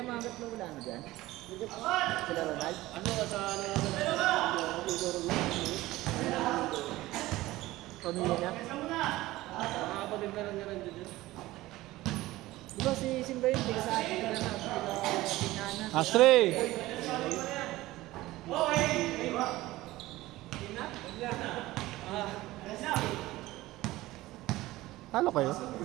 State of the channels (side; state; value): left; quieter; 17.7 dB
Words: mga gatlo wala na dyan. Sila Ronald. Ano ka sa Pamilya niya. mga kapatid na lang niya rin dyan. Di ba si Simba yun? Tiga sa atin ka na sa Piñana. Last three. Talo kayo?